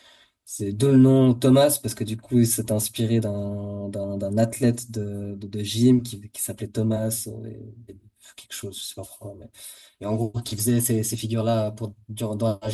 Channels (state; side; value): identical; both; correlation 1.00